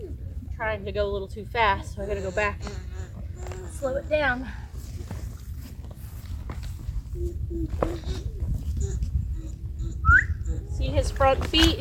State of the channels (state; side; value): identical; both; correlation 1.00